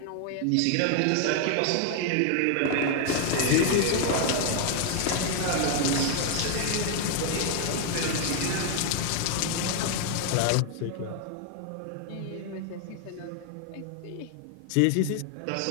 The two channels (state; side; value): different; both; correlation 0.00